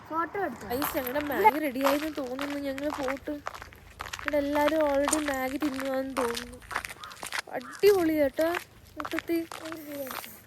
ഞങ്ങളുടെ മാഗി റെഡി ആയെന്ന് തോന്നുന്നു. ഞങ്ങൾ പോട്ട് ഇവിടെ എല്ലാരും ഓൾറെഡി മാഗി തിന്നുവാന്ന് തോന്നുന്നു. അടിപൊളി കേട്ടോ. മൊത്തത്തിൽ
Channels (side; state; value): both; identical; correlation 1.00